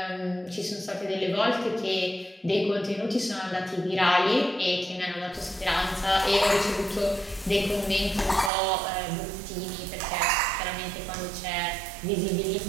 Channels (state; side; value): drops out; left; at 8.5 s